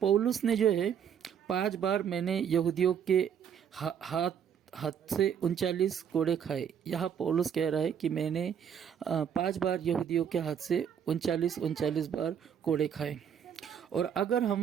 ने जो है 5 बार मैंने यहूदियों के हाथ से 39 कोड़े खाए। यहाँ पौलुस कह रहा है कि मैंने 5 बार यहूदियों के हाथ से 39 बार कोड़े खाए। और अगर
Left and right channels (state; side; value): quieter; left; 8.2 dB